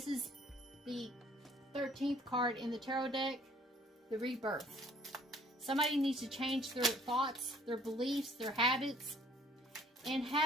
is the 13th card in the tarot deck, the rebirth. Somebody needs to change their thoughts, their beliefs, their habits, and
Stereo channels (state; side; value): normal; both; correlation 0.58